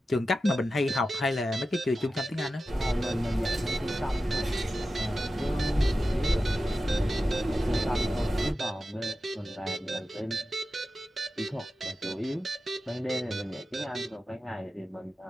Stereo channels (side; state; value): both; normal; correlation 0.93